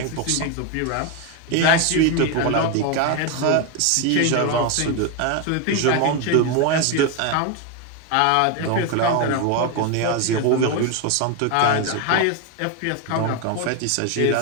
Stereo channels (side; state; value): both; different; correlation 0.02